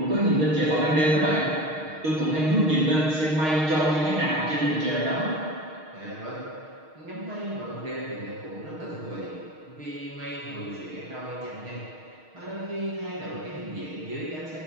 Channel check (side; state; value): left; late; 6.4 ms